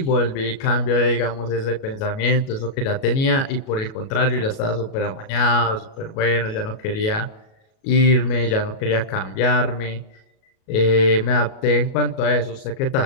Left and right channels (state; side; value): late; right; 37 ms